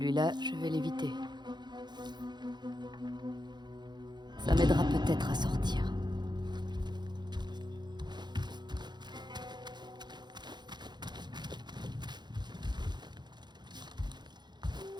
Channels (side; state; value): left; late; 0.21 ms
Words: je vais l'éviter. Ça m'aidera peut-être à sortir.